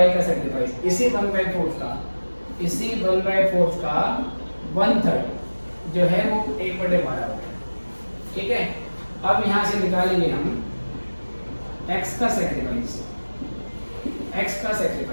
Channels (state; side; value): inverted; both; correlation -1.00